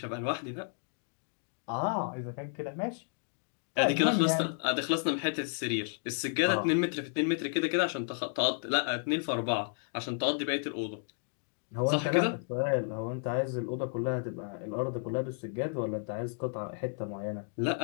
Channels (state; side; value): silent; right; 56 dB below the other